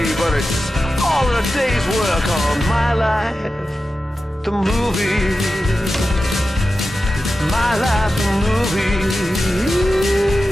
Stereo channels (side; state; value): both; normal; correlation 0.93